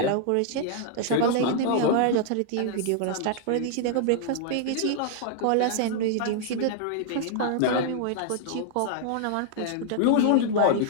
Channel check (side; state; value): both; different; correlation -0.01